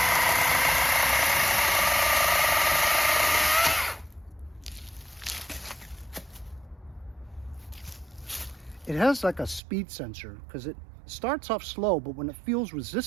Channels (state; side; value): drops out; left; at 9.6 s